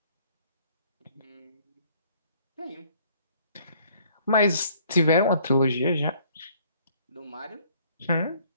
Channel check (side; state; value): both; inverted; correlation -0.60